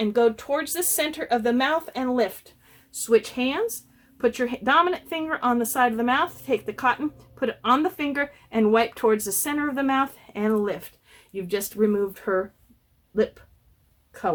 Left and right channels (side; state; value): both; identical; correlation 1.00